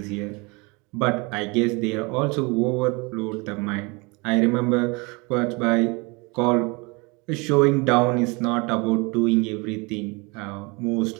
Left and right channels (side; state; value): left; quieter; 28.0 dB